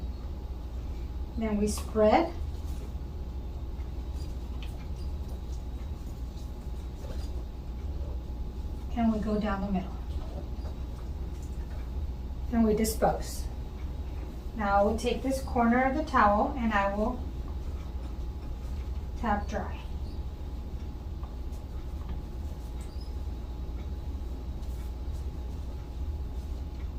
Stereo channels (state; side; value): identical; both; correlation 1.00